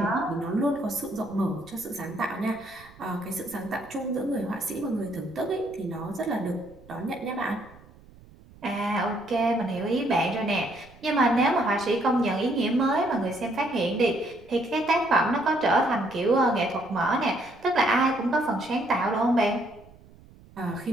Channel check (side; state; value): right; noise; rumble, 24 dB below the sound